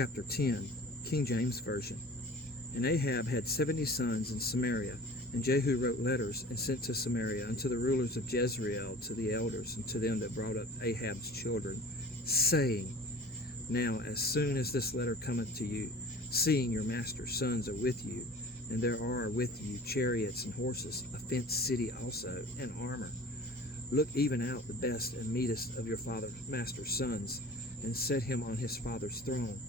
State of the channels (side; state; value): both; normal; correlation 0.44